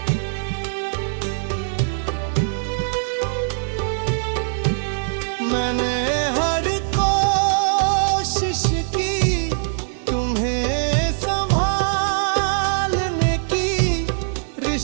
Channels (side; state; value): left; silent; 59 dB below the other